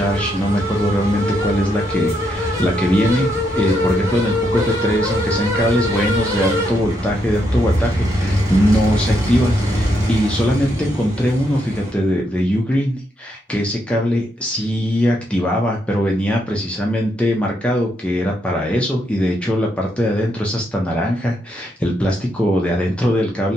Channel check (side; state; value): both; normal; correlation 0.78